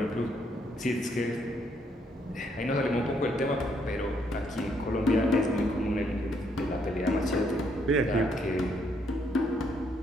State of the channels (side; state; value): both; normal; correlation 0.72